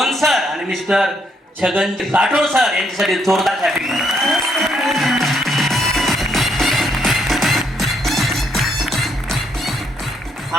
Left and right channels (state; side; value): normal; both; correlation 0.73